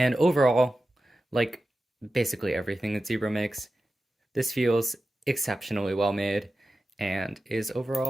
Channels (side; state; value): both; normal; correlation 0.93